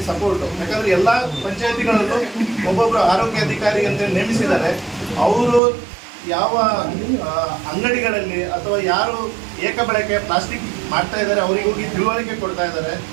ಸಪೋರ್ಟು. ಯಾಕಂದರೆ ಎಲ್ಲ ಪಂಚಾಯತಿಗಳಲ್ಲೂ ಒಬ್ಬೊಬ್ಬರು ಆರೋಗ್ಯ ಅಧಿಕಾರಿ ಅಂತ ನೇಮಿಸಿದ್ದಾರೆ. ಅವರು ಯಾವ ಅಂಗಡಿಗಳಲ್ಲಿ ಅಥವಾ ಯಾರು ಏಕಬಳಕೆ ಪ್ಲಾಸ್ಟಿಕ್ ಮಾಡ್ತಾ ಇದ್ದಾರೆ ಅವರಿಗೆ ಹೋಗಿ ತಿಳುವಳಿಕೆ ಕೊಡ್ತಾ ಇದ್ದಾರೆ.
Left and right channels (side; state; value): left; drops out; at 5.6 s